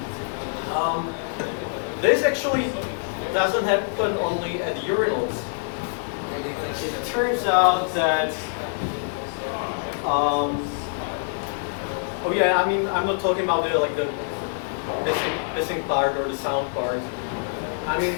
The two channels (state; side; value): silent; right; digital silence